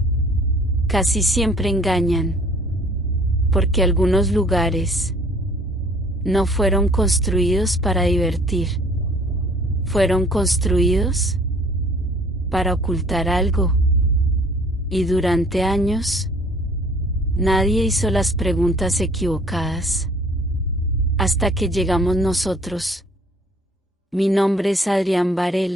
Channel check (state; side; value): normal; both; correlation 0.55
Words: casi siempre engañan. Porque algunos lugares no fueron construidos para divertir. Fueron construidos para ocultar algo. Y durante años, nadie hizo las preguntas equivocadas. Hasta que llegamos nosotros. Mi nombre es Adrián